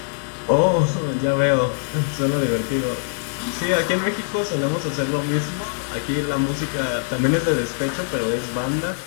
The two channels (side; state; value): right; silent; digital silence